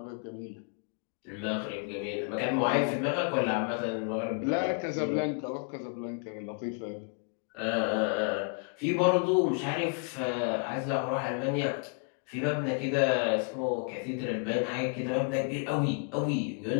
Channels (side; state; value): right; quieter; 39.5 dB